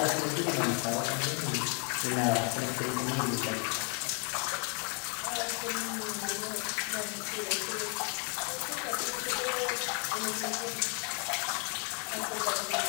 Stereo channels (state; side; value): quieter; right; 36.8 dB